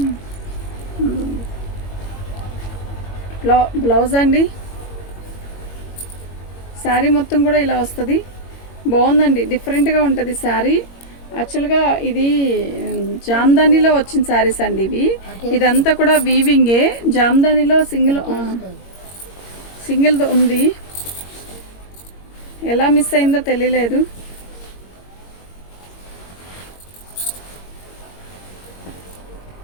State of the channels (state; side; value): late; right; 21 ms